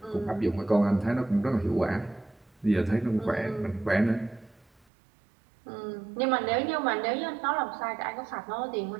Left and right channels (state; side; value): drops out; left; at 4.9 s